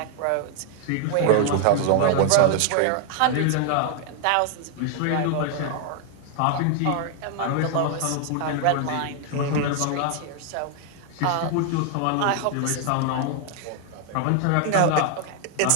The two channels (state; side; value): different; both; correlation 0.00